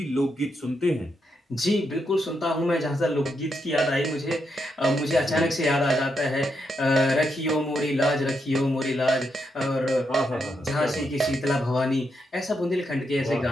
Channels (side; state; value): both; normal; correlation 0.81